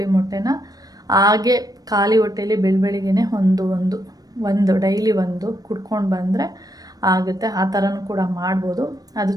ಮೊಟ್ಟೆನ ಹಾಗೆ ಖಾಲಿ ಹೊಟ್ಟೆಯಲ್ಲಿ ಬೆಳಬೆಳಿಗ್ಗೆ ಒಂದು ಡೈಲಿ ಒಂದು ಕುಡ್ಕೊಂಡು ಬಂದರೆ ಆಗುತ್ತೆ. ಆ ಥರನೂ ಕೂಡ ಮಾಡ್ಬೋದು. ಅದು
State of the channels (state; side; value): late; left; 0.18 ms